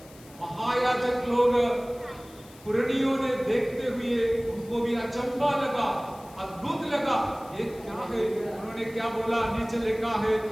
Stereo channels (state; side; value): noise; left; hiss, 23 dB below the sound